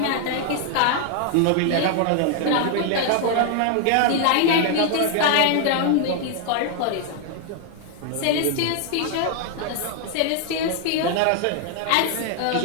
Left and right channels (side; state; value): both; different; correlation 0.00